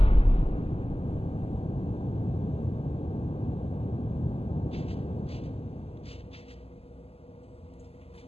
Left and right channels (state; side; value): late; right; 0.29 ms